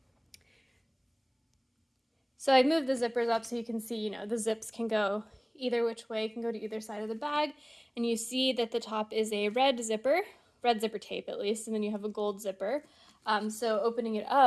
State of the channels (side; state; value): both; identical; correlation 1.00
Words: So I moved the zippers up so you can see, the zips can go either which way, can go to either side of the bag. And you see that the top is a red zipper tape at least, and then you have a gold zipper. So opening it